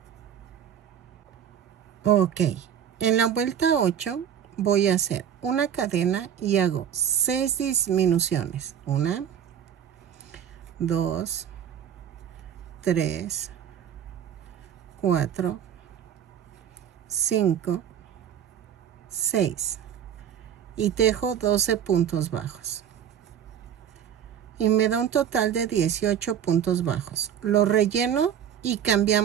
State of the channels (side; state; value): left; quieter; 9.2 dB